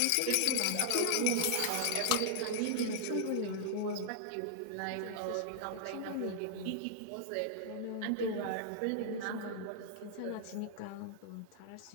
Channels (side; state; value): both; different; correlation -0.01